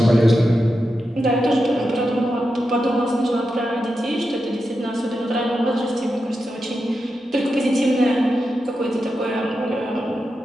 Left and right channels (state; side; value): normal; both; correlation 0.89